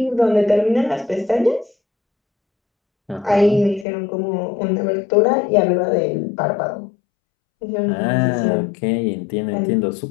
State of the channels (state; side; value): drops out; right; at 3.9 s